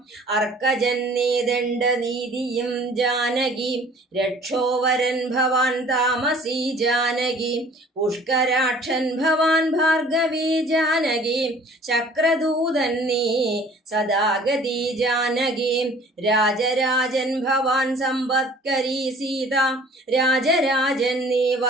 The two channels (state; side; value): normal; both; correlation 0.51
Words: അർക്കജൻ നീ ദണ്ഡനീതിയും ജാനകി രക്ഷോവരൻ ഭവാൻ താമസി ജാനകി പുഷ്കരാക്ഷൻ ഭവാൻ ഭാർഗവി ജാനകി ചക്രദൂതൻ നീ സദാഗതി ജാനകി രാജരാജൻ ഭവാൻ സമ്പത്കരി സീത രാജരാജൻ നീ